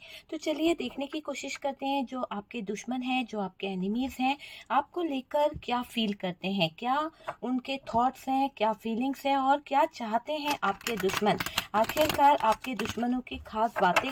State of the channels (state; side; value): identical; both; correlation 1.00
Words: तो चलिए देखने की कोशिश करते हैं, जो आपके दुश्मन हैं, जो आपके एनिमीज हैं, आपको लेकर क्या फील करते हैं, क्या उनके थॉट्स हैं, क्या फीलिंग्स हैं और क्या चाहते हैं आपके दुश्मन। आखिरकार आपके दुश्मनों की खास बातें